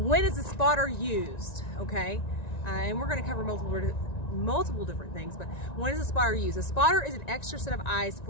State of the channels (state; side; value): late; right; 1.9 ms